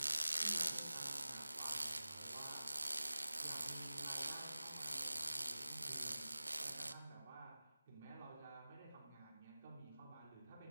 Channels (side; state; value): both; inverted; correlation -0.97